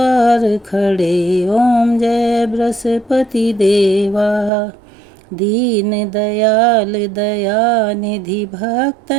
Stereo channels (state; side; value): drops out; left; at 4.5 s